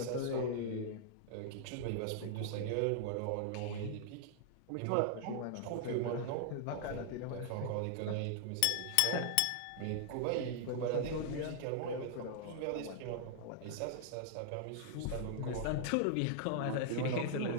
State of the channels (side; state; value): both; different; correlation -0.01